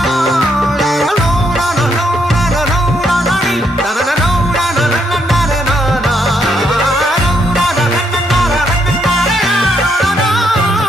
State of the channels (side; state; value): both; normal; correlation 0.75